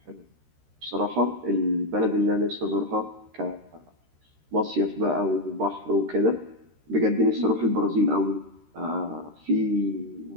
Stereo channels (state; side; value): late; left; 13 ms